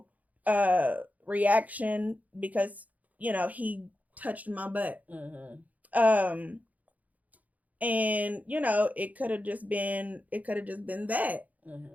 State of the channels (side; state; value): left; late; 0.076 ms